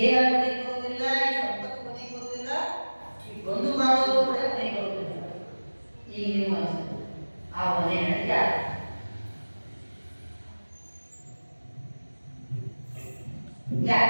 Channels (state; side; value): inverted; both; correlation -1.00